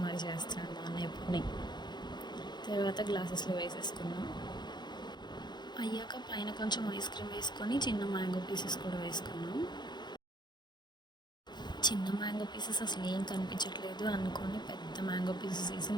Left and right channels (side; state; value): right; late; 0.21 ms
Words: మరి చేస్తున్నాడు మా అన్నయ్య ఎప్పుడుని. తర్వాత గ్లాసెస్లో వేసేసుకున్నాం. అయ్యాక పైన కొంచెం ఐస్ క్రీమ్ వేసుకొని చిన్న మ్యాంగో పీసెస్ కూడా వేసుకున్నాం. చిన్న మ్యాంగో పీసెస్ అసలు ఏం కనిపించట్లేదు అనుకొని పెద్ద మ్యాంగో పీసెస్ వేసి